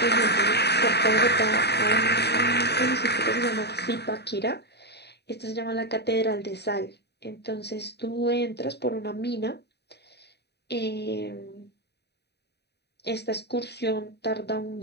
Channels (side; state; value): right; late; 0.48 ms